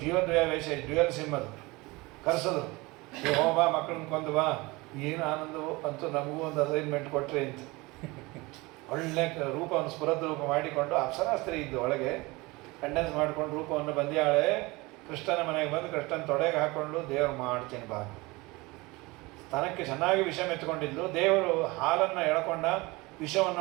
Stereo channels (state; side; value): quieter; left; 23.2 dB